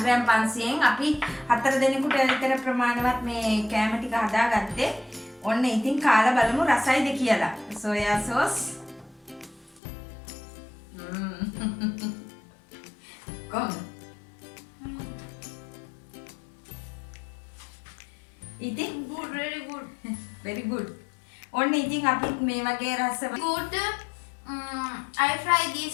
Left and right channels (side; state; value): right; drops out; at 9.8 s